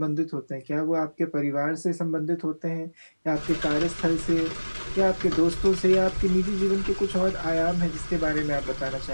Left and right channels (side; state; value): both; inverted; correlation -1.00